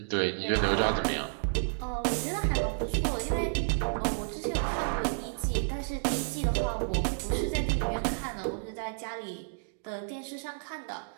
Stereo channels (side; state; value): left; silent; digital silence